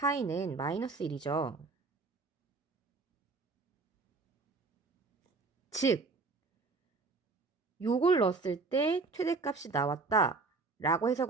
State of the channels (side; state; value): left; quieter; 3.9 dB